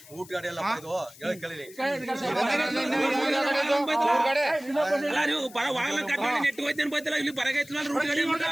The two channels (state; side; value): noise; left; hiss, 20 dB below the sound